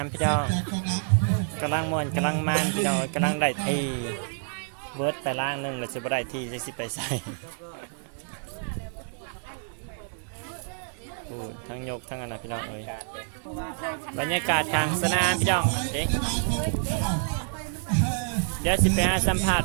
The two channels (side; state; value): left; silent; digital silence